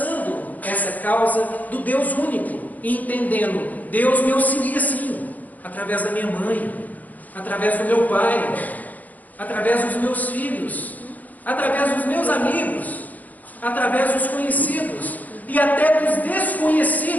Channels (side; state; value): right; late; 0.079 ms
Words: essa causa do Deus único e entendendo, Deus me auxilia sim, através da minha mãe, através do meu pai, através dos meus filhos, através dos meus amigos, através dos conhecidos e até dos